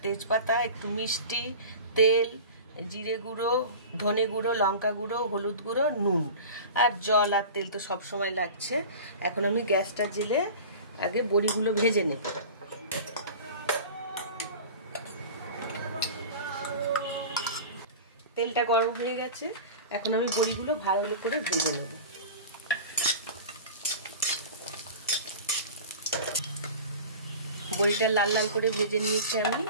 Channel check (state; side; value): inverted; both; correlation -0.35